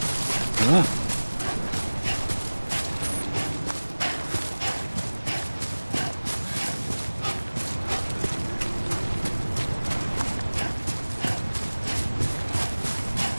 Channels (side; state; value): both; inverted; correlation -1.00